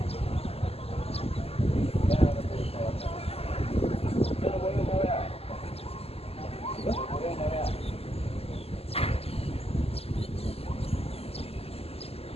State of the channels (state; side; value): late; right; 0.29 ms